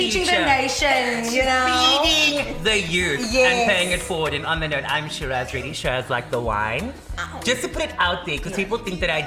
the nation, you know. Feeding the youth and paying it forward. And on the note, I'm Shiraz, really Shiraz like the wine. Just to put it out there, because people think that I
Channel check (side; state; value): both; identical; correlation 1.00